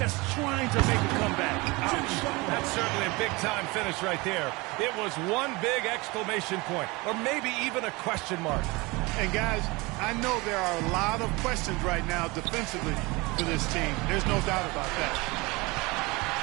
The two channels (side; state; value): left; quieter; 24.3 dB